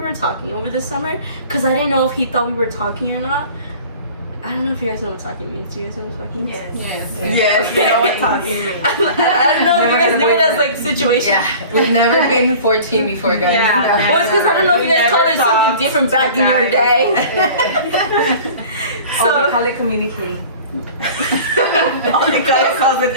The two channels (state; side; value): inverted; both; correlation -0.43